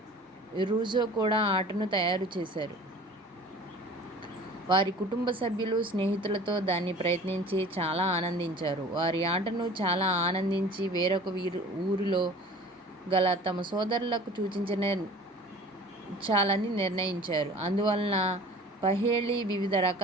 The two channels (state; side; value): normal; both; correlation 0.44